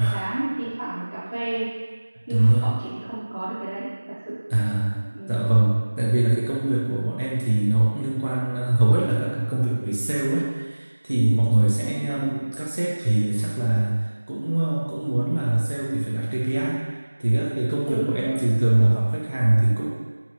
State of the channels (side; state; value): both; inverted; correlation -1.00